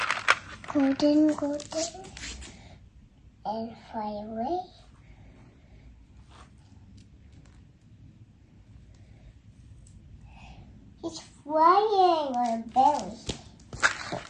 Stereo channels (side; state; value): both; identical; correlation 1.00